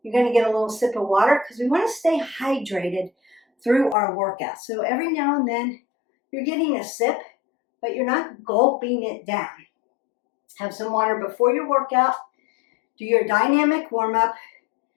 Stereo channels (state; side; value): drops out; right; at 4.0 s